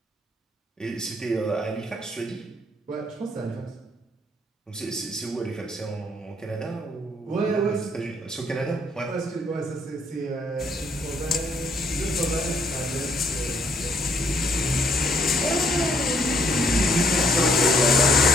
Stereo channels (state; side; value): normal; both; correlation 0.68